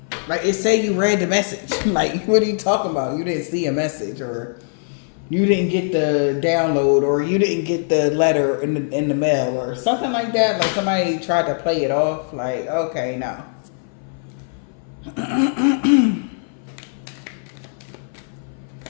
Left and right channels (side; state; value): right; silent; 58 dB below the other